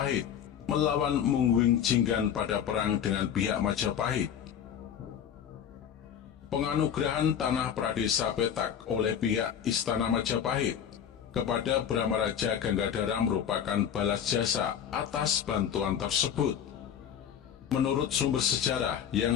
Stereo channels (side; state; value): right; quieter; 8.8 dB